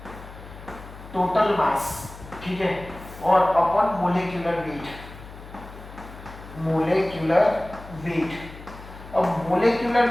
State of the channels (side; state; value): left; noise; hum, 16 dB below the sound